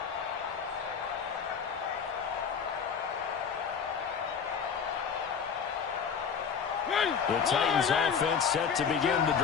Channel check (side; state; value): right; quieter; 6.7 dB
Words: The Titans offense set to begin the